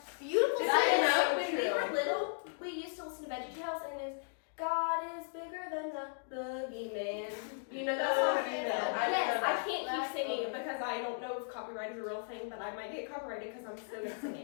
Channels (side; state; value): right; silent; digital silence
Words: beautiful. Did That you is know? so When we true. were little, we used to listen to VeggieTales, and it was God is bigger than the boogeyman. You know that song? Boogeyman. Yes, I know I that. can't keep singing it because I don't know if copyright is a real thing, but I might get copyrighted because I'm so good at